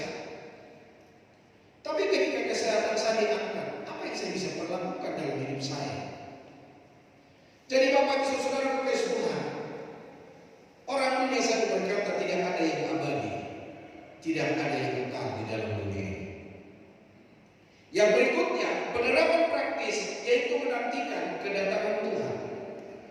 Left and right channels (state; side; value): identical; both; correlation 1.00